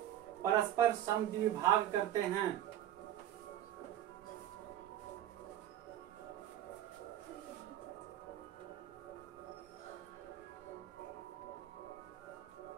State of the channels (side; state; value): left; quieter; 12.1 dB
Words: परस्पर समद्विभाग करते हैं।